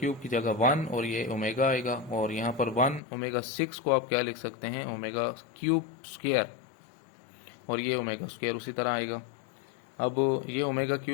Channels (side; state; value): right; drops out; at 3.0 s